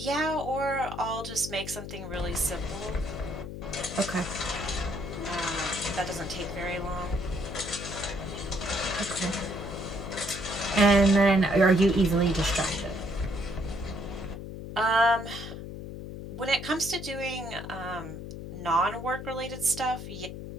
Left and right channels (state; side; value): noise; left; hum, 9 dB below the sound